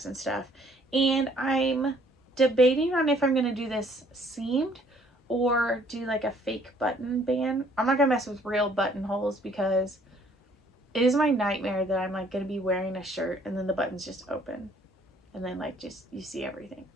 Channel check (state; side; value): normal; both; correlation 0.61